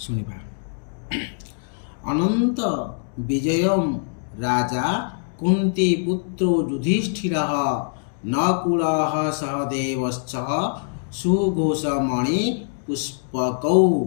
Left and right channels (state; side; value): silent; right; digital silence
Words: अनंत विजय राजा कुंती पुत्रो युधिष्ठिर नकुल सहदेवश्च सुघोषमणि पुष्पकौ।